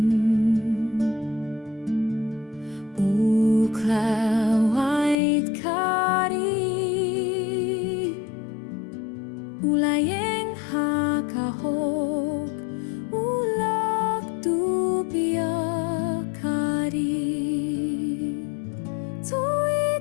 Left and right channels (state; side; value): drops out; right; at 5.2 s